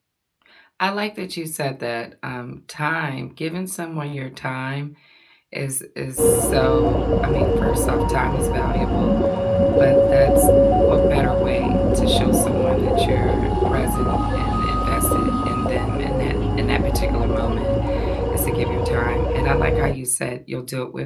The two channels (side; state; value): both; identical; correlation 1.00